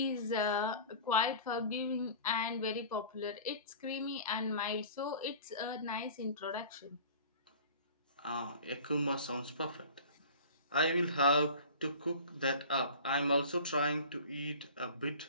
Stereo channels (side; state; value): both; inverted; correlation -0.40